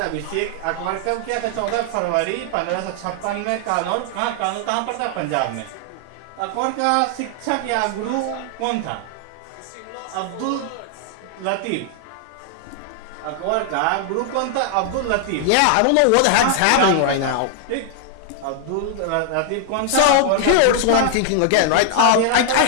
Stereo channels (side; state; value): both; different; correlation 0.00